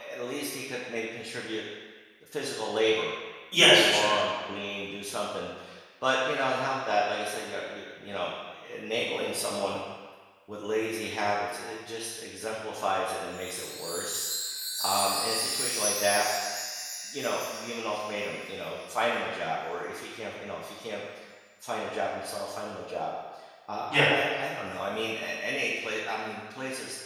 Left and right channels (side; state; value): both; identical; correlation 1.00